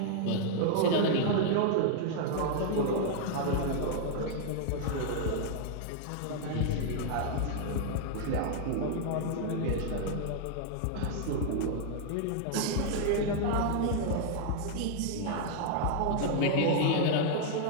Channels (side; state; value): both; different; correlation 0.00